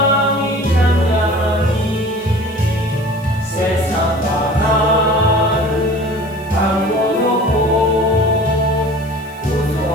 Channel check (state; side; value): noise; right; hiss, 25 dB below the sound